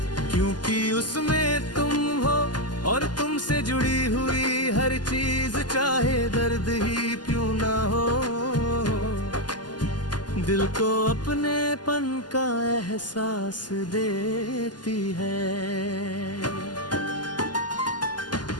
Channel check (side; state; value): right; late; 0.70 ms